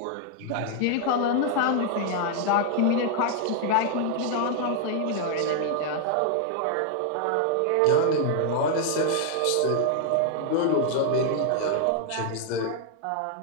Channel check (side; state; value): both; different; correlation 0.00